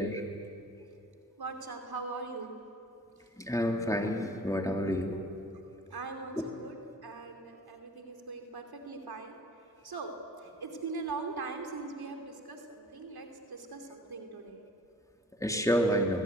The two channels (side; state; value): both; normal; correlation 0.49